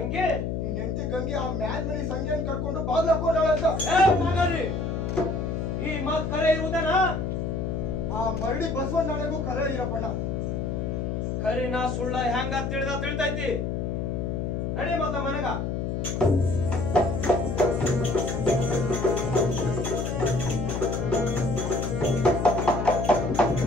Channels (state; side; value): noise; left; hum, 1 dB below the sound